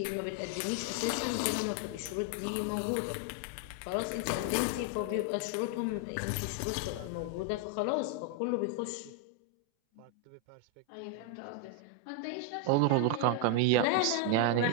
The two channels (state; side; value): different; both; correlation 0.00